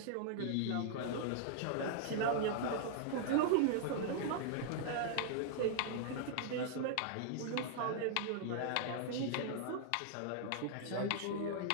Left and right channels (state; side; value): different; both; correlation -0.01